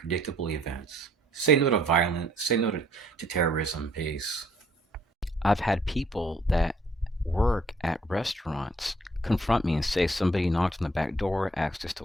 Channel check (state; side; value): normal; both; correlation 0.63